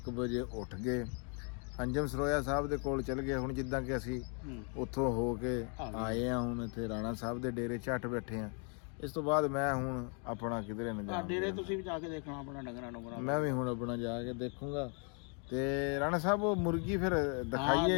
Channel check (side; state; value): right; quieter; 39.4 dB